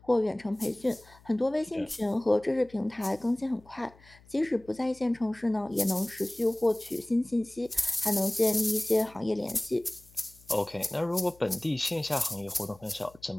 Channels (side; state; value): left; noise; hum, 26 dB below the sound